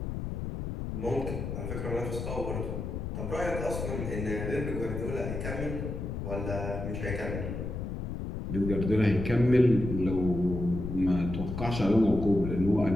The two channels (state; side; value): noise; left; rumble, 5 dB below the sound